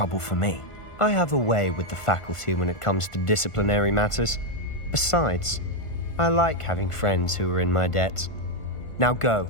for me. I have a way with the faculty when it comes to disciplinary matters. Besides, I like having friends who are in my debt. Now go.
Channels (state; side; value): late; right; 1.5 ms